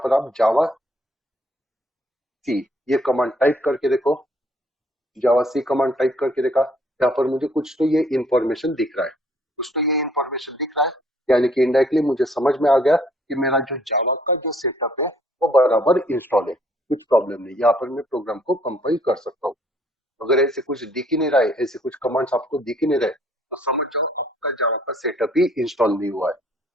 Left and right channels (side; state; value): both; normal; correlation 0.62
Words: आप जावा सी ये कमांड टाइप करके देखो, जावा सी कमांड टाइप करके देखा, यहाँ पर मुझे कुछ तो ये इंफॉर्मेशन दिख रहा है, कुछ तो ये इंफॉर्मेशन दिख रहा है, यानी कि इनडायरेक्टली मुझे समझ में आ गया कि मेरा जो जावा का जो सेटअप है वो बराबर इंस्टॉल है, कुछ प्रॉब्लम नहीं। यहाँ पर मैं प्रोग्राम को कंपाइल कर सकता हूँ। अगर ऐसे कुछ दिख ही नहीं रहा है, ऐसे कुछ कमांड्स आपको दिख ही नहीं रहे, तो समझ जाओ आपका जावा का सेटअप ही इंस्टॉल नहीं हुआ है।